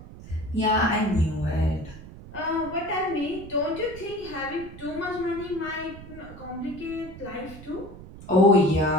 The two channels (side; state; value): right; noise; rumble, 15 dB below the sound